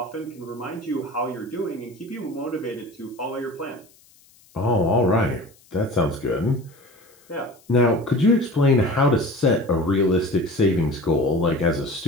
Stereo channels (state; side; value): noise; left; hiss, 29 dB below the sound